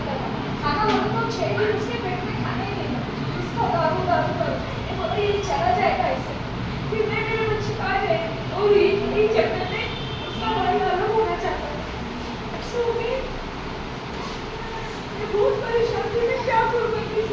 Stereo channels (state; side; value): identical; both; correlation 1.00